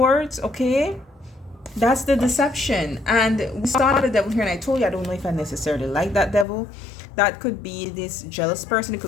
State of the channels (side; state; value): right; drops out; at 6.5 s